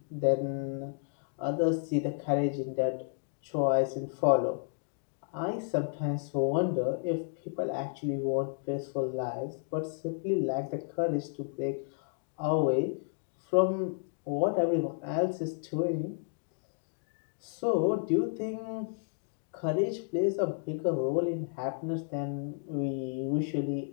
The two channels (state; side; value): silent; right; digital silence